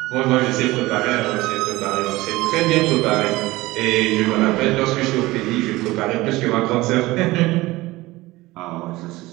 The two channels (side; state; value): left; quieter; 19.4 dB